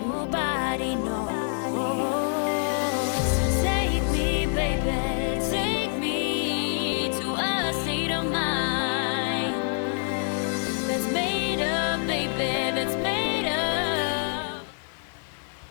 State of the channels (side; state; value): right; silent; digital silence